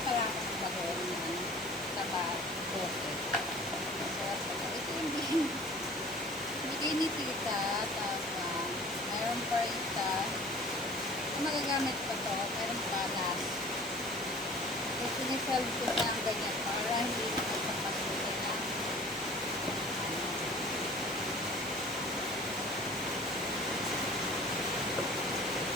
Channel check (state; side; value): normal; both; correlation 0.46